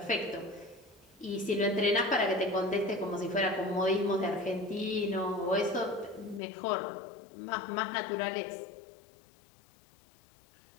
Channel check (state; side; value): drops out; right; at 6.4 s